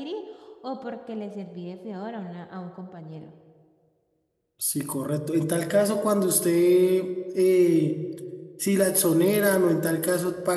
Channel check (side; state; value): both; identical; correlation 1.00